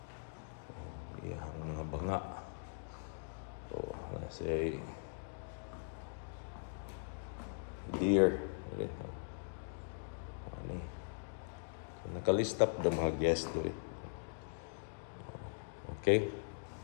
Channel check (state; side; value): silent; right; digital silence